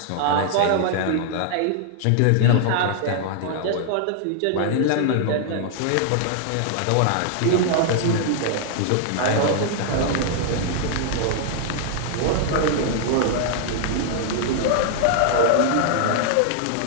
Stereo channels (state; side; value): different; both; correlation -0.01